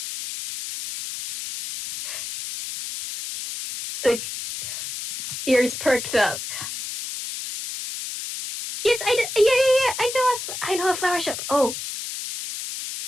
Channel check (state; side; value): noise; left; hiss, 7 dB below the sound